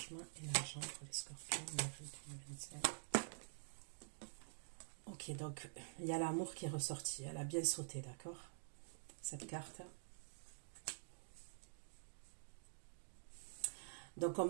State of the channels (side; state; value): left; silent; digital silence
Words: et l'argent pour les scorpions en avril 2025. Ok, donc il y a l'amour qui est ressorti. Elle a bien sauté, d'accord? Cette carte. Donc on